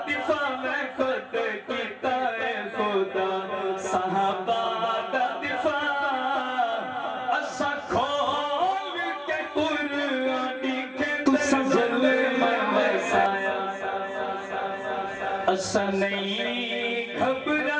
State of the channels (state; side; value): identical; both; correlation 1.00